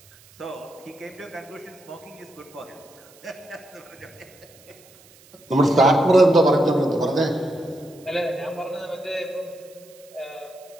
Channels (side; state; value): right; noise; hiss, 26 dB below the sound